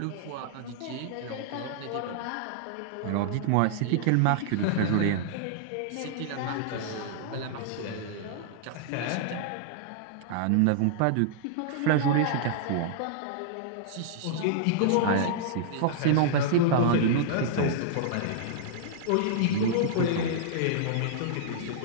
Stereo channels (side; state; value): both; different; correlation -0.01